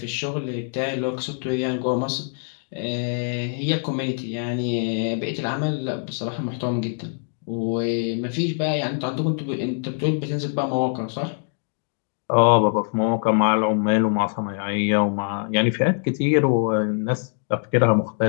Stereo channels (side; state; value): right; silent; 63 dB below the other